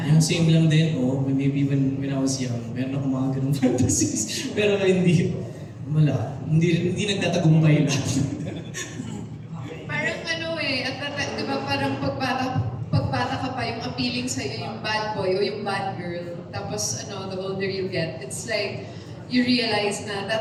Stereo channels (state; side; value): identical; both; correlation 1.00